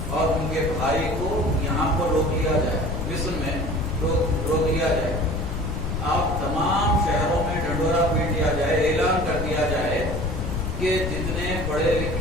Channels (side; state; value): left; noise; rumble, 3 dB below the sound